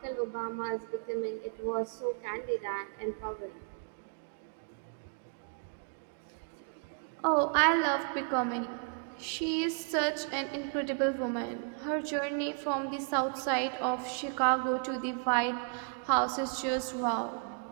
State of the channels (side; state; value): left; quieter; 37.8 dB